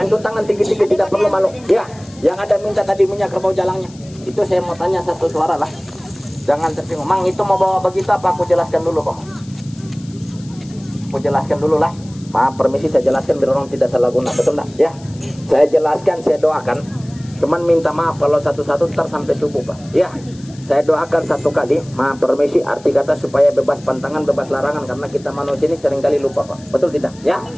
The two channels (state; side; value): noise; left; hiss, 24 dB below the sound